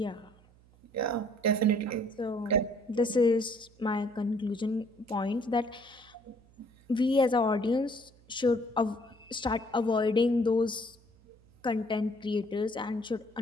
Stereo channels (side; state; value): right; noise; hum, 28 dB below the sound